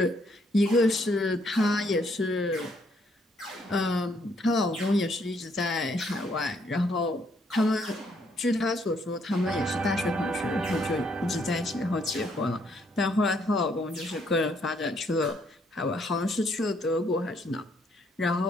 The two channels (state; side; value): normal; both; correlation 0.70